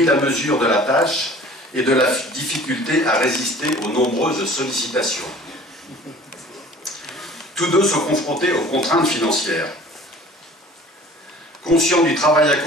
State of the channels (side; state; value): both; normal; correlation 0.47